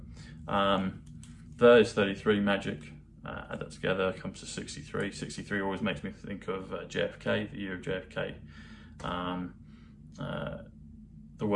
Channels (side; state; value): both; identical; correlation 1.00